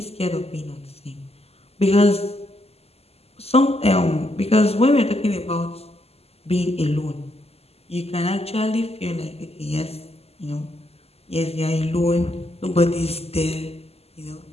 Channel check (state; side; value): late; right; 0.29 ms